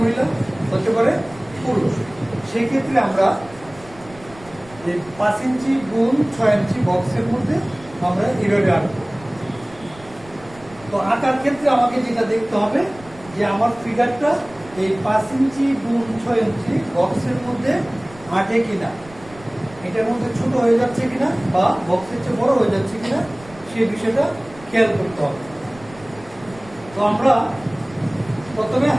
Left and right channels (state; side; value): noise; right; rumble, 21 dB below the sound